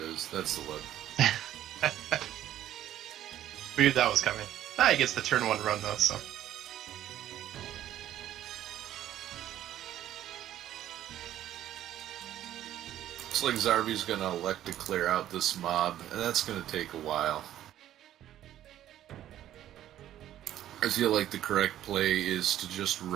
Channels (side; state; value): left; quieter; 12.2 dB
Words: is. That's the web. We knew that was coming. He gets the turn 1 run, though, so... Looks like Zarby's gonna elect to clear out this mob, and that's gonna take a while. I feel like the correct play is to just